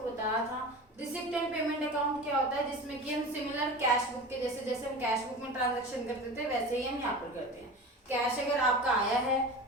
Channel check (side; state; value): both; normal; correlation 0.33